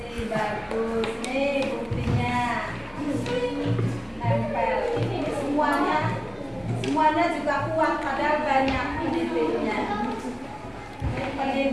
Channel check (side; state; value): both; identical; correlation 1.00